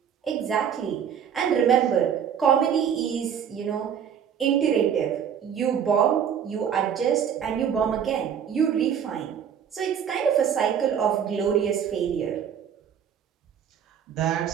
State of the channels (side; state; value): left; quieter; 8.2 dB